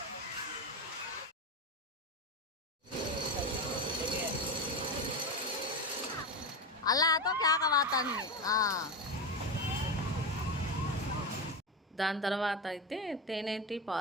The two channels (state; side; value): normal; both; correlation 0.17